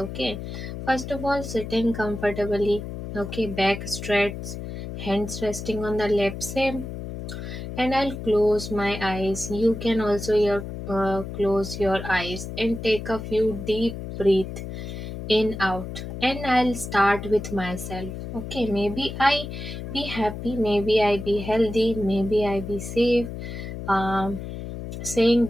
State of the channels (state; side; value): noise; left; hum, 8 dB below the sound